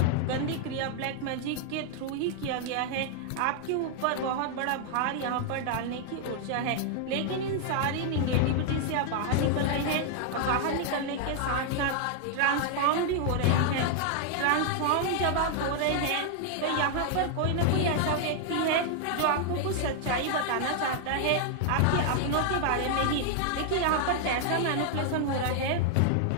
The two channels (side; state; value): both; different; correlation 0.00